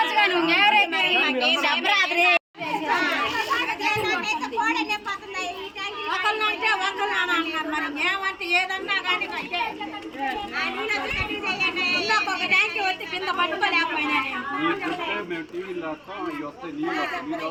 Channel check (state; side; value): identical; both; correlation 1.00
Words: ఒకళ్ళంటే ఒకళ్ళు అన్నారు. మరి మేమంటే ఏదన్నా కానీ ఒక ట్యాంక్ వచ్చి కింద పట్టుకోలేకపోయినా